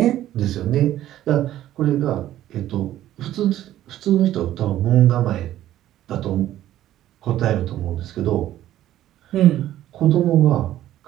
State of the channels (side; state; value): left; quieter; 13.1 dB